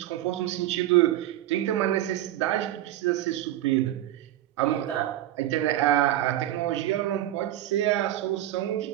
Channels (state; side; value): quieter; left; 13.6 dB